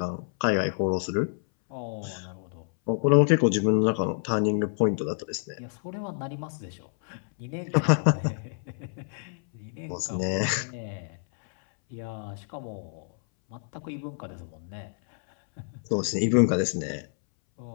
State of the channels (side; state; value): right; silent; 59 dB below the other